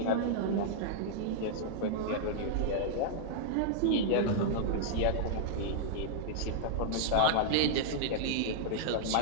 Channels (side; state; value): both; different; correlation -0.02